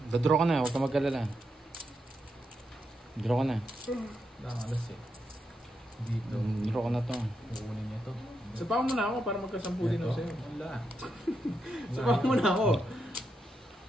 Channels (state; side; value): normal; both; correlation 0.83